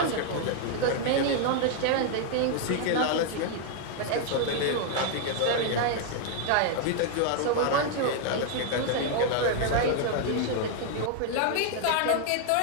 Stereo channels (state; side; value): different; both; correlation 0.00